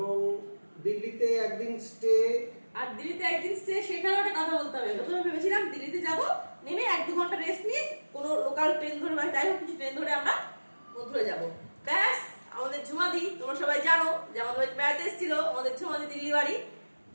দিল্লিতে একদিন স্টে। আর দিল্লিতে একদিন স্টে, সেখানে একটা কথা বলতে হবে। প্রথমে ভেবেছিলাম দিল্লিতে যাব, নেমে 1-2 ঘন্টা রেস্ট নিয়ে কোনো লোকাল ট্রেন ধরে বা যাই হোক কিছু ট্রেন ধরে আমরা মথুরা যাব। ব্যাস, আমাদের ঝুমাদি, তোমরা সবাই জানো যে আমাদের বাড়িতে বেড়াতে এসেছিল আমাদের ঝুমাদি, দিল্লি বাড়ি।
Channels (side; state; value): both; inverted; correlation -1.00